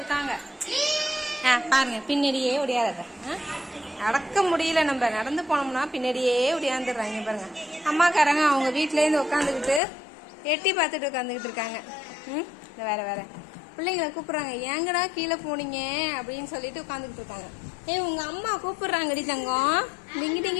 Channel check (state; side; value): drops out; right; at 9.8 s